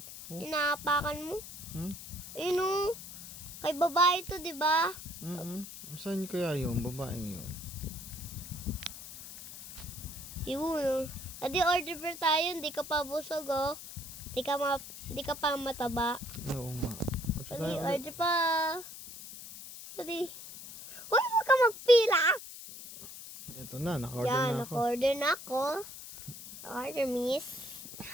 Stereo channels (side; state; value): left; noise; hiss, 13 dB below the sound